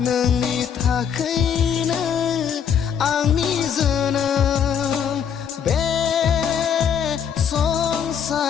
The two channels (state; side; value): quieter; right; 7.9 dB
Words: नोंनि थाखायनो आंनि जोनोम बे